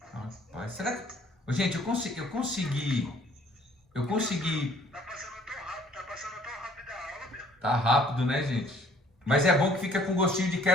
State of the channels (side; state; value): both; normal; correlation 0.58